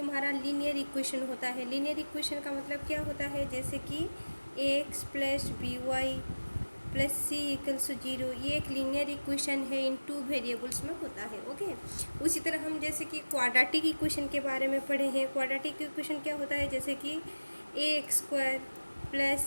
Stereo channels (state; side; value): inverted; both; correlation -1.00